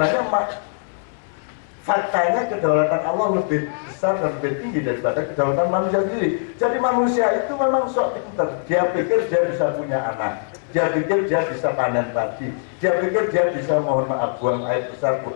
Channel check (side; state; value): right; silent; 64 dB below the other